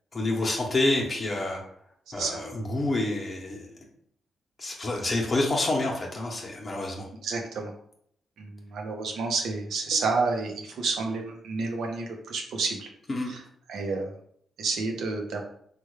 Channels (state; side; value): normal; both; correlation 0.80